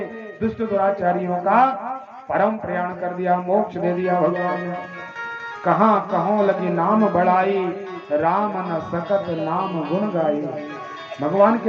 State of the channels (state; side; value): identical; both; correlation 1.00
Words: दुष्ट दुराचारियों का परम प्रयाण कर दिया, मोक्ष दे दिया। भगवान ने कहाँ कहों लगी नाम बढ़ाई, राम न सकत नाम गुण गाई। भगवान